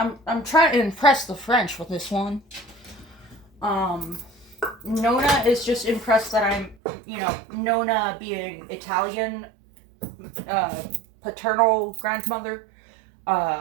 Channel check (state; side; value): drops out; left; at 6.8 s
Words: trying to impress the French with this one. Nona is just impressed that I'm, Nona being Italian, paternal grandmother,